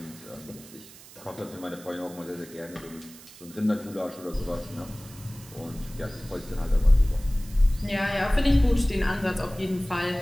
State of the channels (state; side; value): noise; right; hiss, 19 dB below the sound